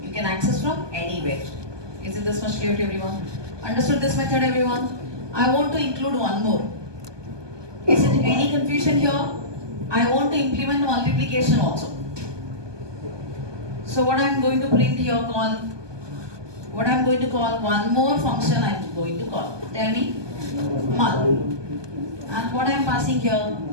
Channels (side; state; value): left; late; 1.2 ms